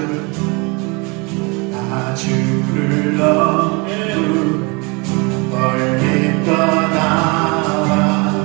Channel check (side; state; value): left; quieter; 29.1 dB